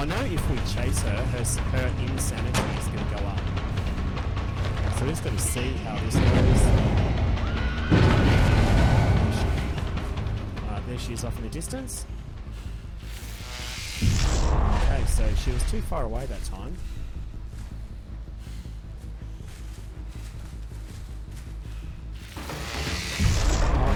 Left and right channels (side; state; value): both; identical; correlation 1.00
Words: know if we chase her, her insanity is going to go up. So we're just going to see how this goes. There she is off in the distance. Okay, so she was too far away that time.